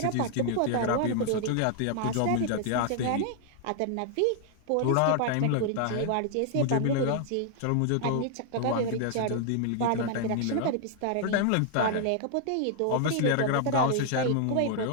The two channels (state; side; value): different; both; correlation -0.01